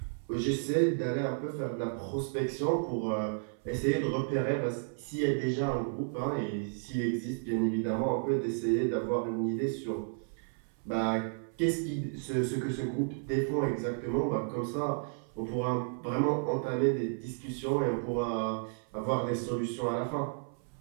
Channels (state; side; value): silent; left; 56 dB below the other